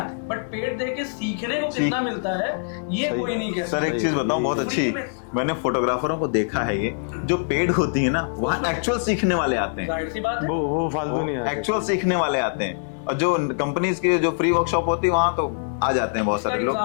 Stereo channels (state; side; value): silent; right; digital silence